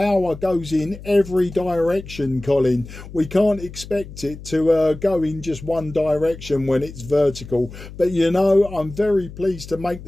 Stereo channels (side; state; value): left; noise; hum, 15 dB below the sound